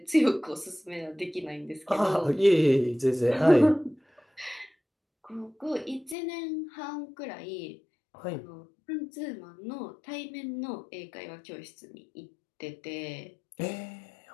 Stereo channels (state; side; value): drops out; right; at 6.2 s